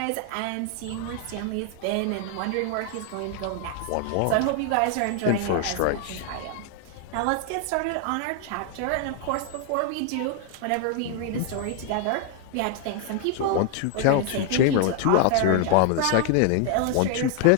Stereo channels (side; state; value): both; different; correlation 0.00